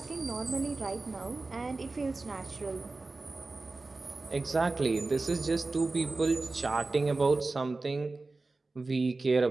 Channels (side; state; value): left; quieter; 3.5 dB